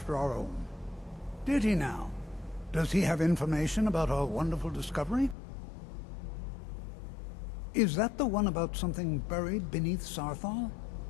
our own. Did he now? Does he have information about our wonderful discovery? Is that the one about something buried beneath Sarthal?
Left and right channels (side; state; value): right; drops out; at 5.4 s